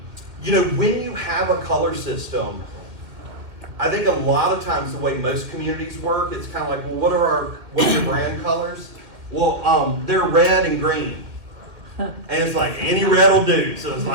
you have a color system, I think a lot of times the way most communities work, it's kind of like, well, what's your brand colors? Well, they're red and green. And it's like any red will do. So it's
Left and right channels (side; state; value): left; late; 2.3 ms